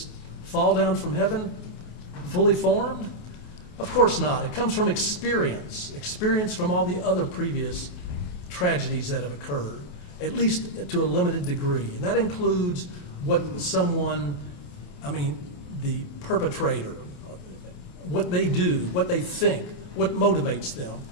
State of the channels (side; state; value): right; late; 28 ms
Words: fall down from heaven, fully formed? Of course not. It comes from experience from all the other previous tragedies that have occurred, at least to a limited degree. And that includes what someone, the perpetrator, what they do, what they think, what motivates them.